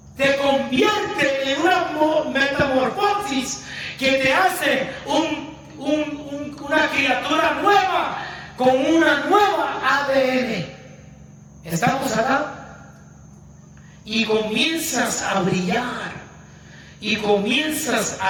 Te convierte en una metamorfosis que te hace una criatura nueva con una nueva ADN. ¿Estamos acá? Y comienzas a brillar. Y comienzas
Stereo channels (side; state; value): both; identical; correlation 1.00